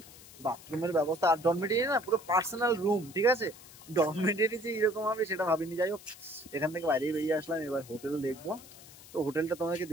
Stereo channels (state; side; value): noise; left; hiss, 19 dB below the sound